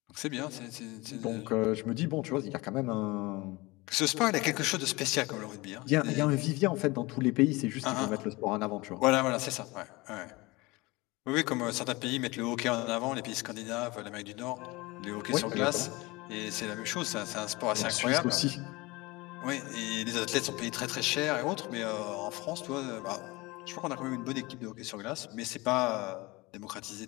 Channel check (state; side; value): quieter; right; 22.9 dB